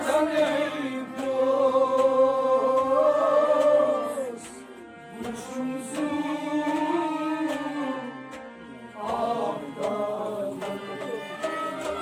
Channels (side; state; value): both; identical; correlation 1.00